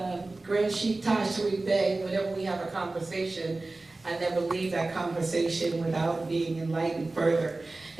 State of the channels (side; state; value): left; quieter; 3.2 dB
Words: Grand Sheikh Taj Tarik Bey, whenever we have a conversation, I never leave that conversation without being enlightened further.